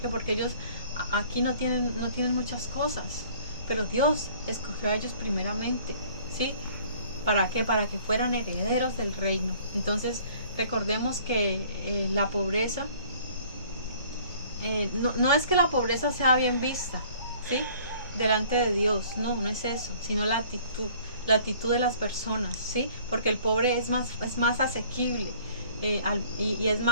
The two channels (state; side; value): inverted; both; correlation -0.54